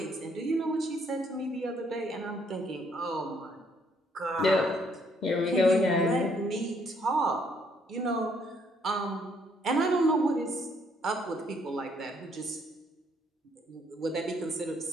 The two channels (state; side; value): normal; both; correlation 0.68